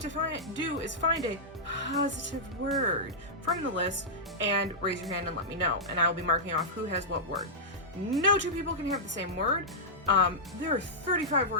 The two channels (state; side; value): normal; both; correlation -0.11